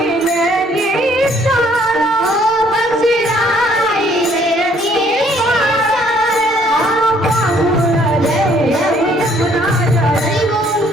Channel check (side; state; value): both; normal; correlation 0.63